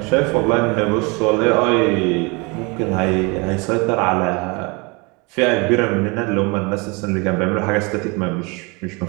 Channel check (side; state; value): left; quieter; 28.8 dB